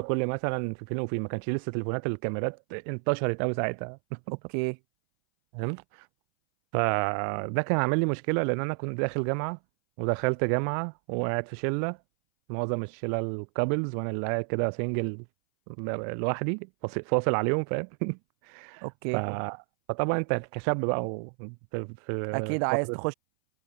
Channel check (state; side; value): silent; left; 58 dB below the other